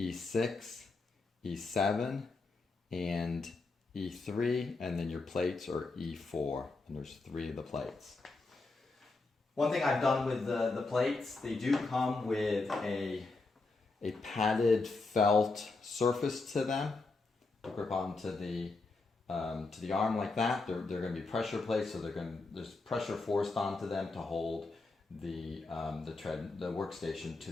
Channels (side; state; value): right; quieter; 3.6 dB